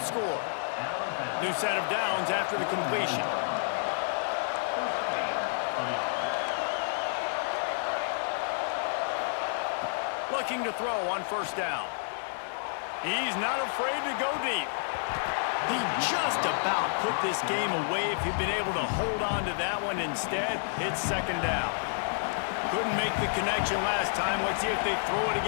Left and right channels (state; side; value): silent; right; digital silence